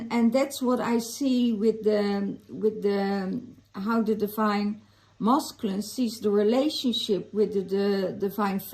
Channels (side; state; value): both; identical; correlation 1.00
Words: that's what I see with the how the divine Masculine sees the relationship with the Divine